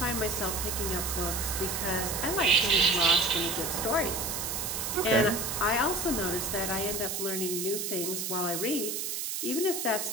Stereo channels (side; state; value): right; noise; hiss, 3 dB below the sound